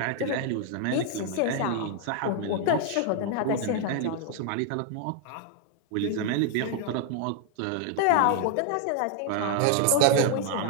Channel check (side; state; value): both; different; correlation 0.00